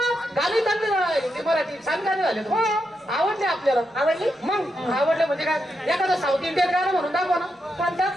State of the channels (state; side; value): normal; both; correlation 0.84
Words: गाणी चांगली हिंदी मराठी छान गाणी झाले. आवडले आपल्याला. आवडली. मग आवडले म्हणजे काय एखादं साऊथ इंडियन गाणं म्हणून दाखवा ना.